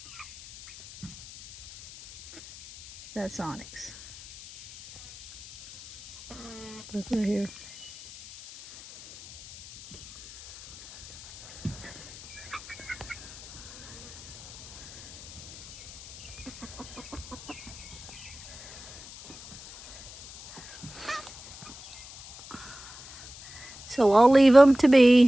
That's onyx. Look right here. So I'll leave them to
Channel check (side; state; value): left; noise; hiss, 17 dB below the sound